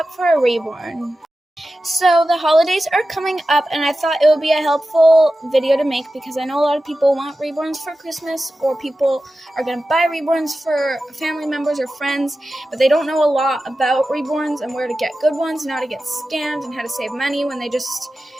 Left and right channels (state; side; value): normal; both; correlation 0.93